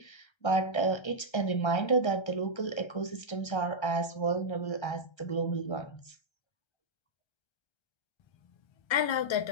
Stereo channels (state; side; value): late; right; 1.3 ms